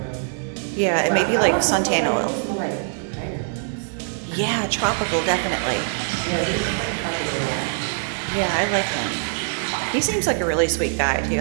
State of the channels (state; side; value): silent; left; digital silence